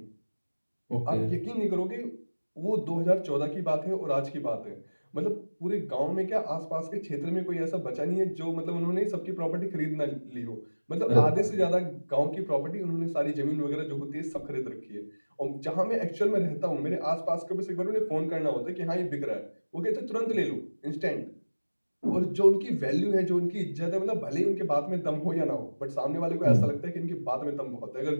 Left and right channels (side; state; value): both; inverted; correlation -1.00